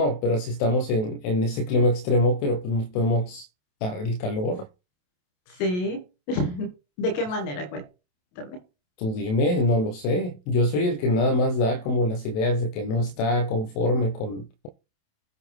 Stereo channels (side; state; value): right; late; 28 ms